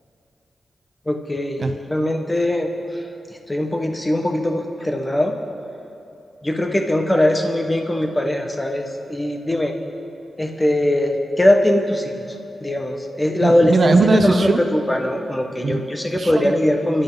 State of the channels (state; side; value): normal; both; correlation 0.93